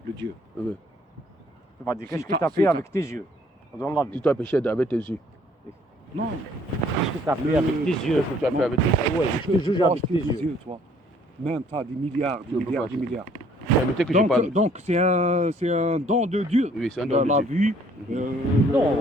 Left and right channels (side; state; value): both; normal; correlation 0.60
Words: le Dieu. oui. Tu vas dire, qu'est-ce Si que t'as- tu as si fait t'as- avec tes yeux dans la Si vie? tu as péché avec tes yeux, Non, Qu'est-ce que tu as fait avec tes yeux? qu'est-ce que tu as fait avec tes yeux? Ouais, je te juge toi, avec tes yeux. toi. Même tu as des milliards, Tu peux pas. des milliards. Permettez que je parle. Donc c'est un don de Dieu. Oui, c'est un don de La Dieu. vue, Non.